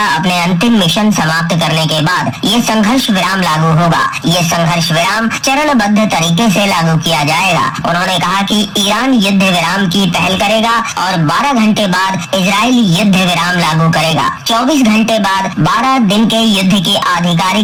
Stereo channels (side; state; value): both; identical; correlation 1.00